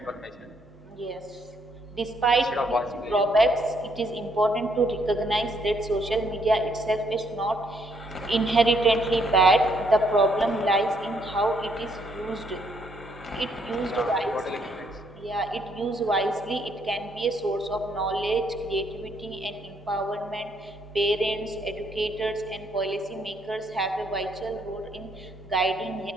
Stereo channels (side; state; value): both; normal; correlation 0.71